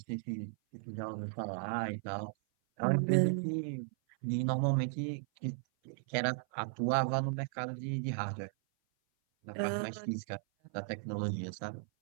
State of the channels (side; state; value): left; silent; 54 dB below the other